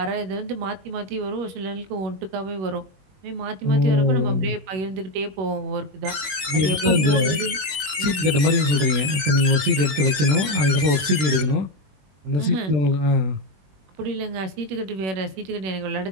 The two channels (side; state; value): left; late; 21 ms